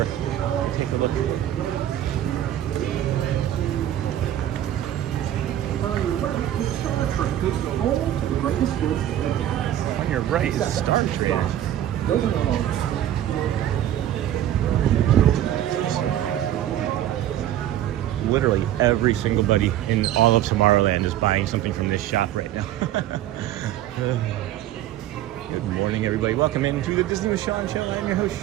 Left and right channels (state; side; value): quieter; left; 12.1 dB